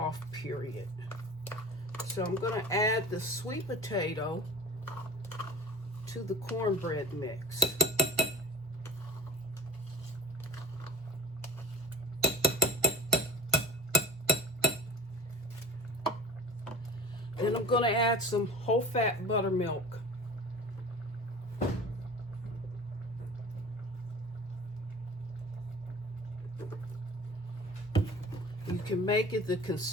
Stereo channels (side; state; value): both; normal; correlation 0.37